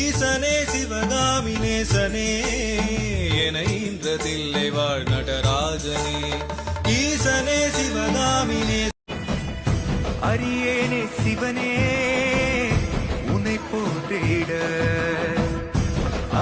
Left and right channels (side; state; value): both; identical; correlation 1.00